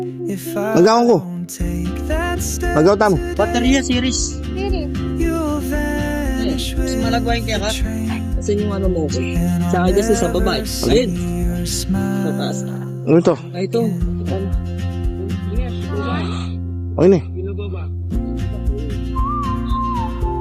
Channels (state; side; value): identical; both; correlation 1.00